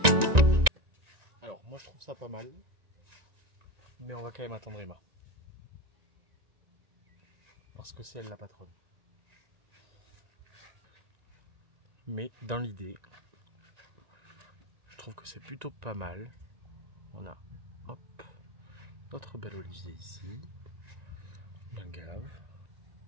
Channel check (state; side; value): late; left; 1.9 ms